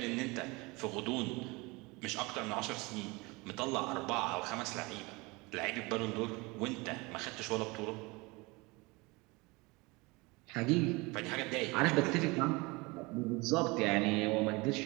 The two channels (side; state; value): left; quieter; 25.0 dB